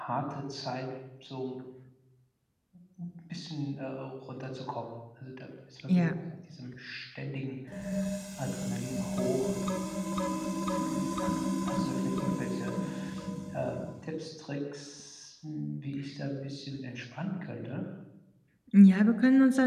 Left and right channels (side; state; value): both; identical; correlation 1.00